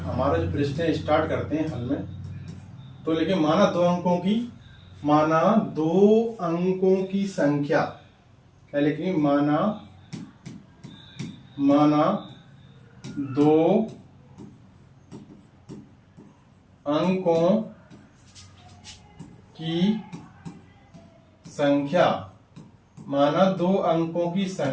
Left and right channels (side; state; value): both; identical; correlation 1.00